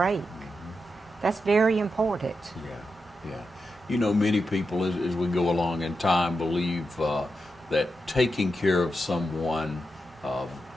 That's very important. Yeah. You know, many people, as we go along in time, believe that taking care of someone,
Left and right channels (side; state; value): both; normal; correlation 0.87